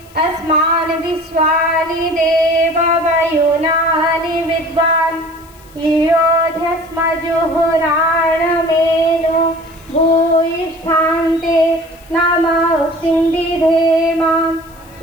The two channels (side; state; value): left; noise; hiss, 27 dB below the sound